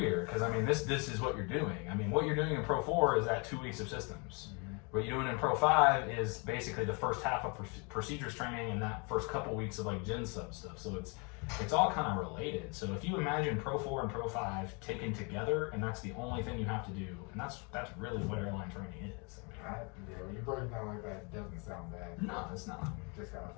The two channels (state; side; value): quieter; right; 32.7 dB